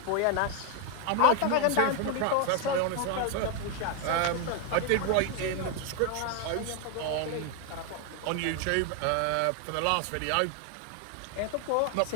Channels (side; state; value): both; different; correlation 0.01